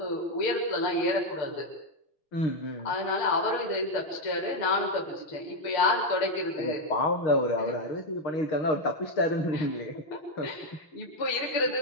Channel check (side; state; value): right; late; 6.6 ms